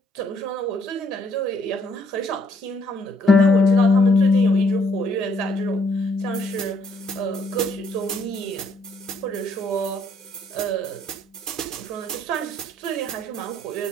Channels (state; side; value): normal; both; correlation 0.67